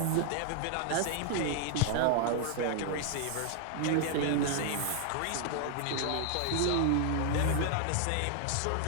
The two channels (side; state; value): both; different; correlation 0.00